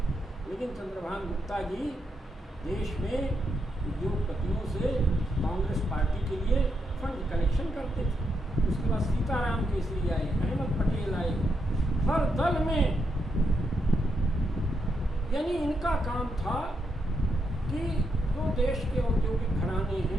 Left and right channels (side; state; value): both; normal; correlation 0.81